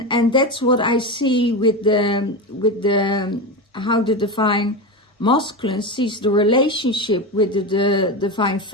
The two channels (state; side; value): normal; both; correlation 0.19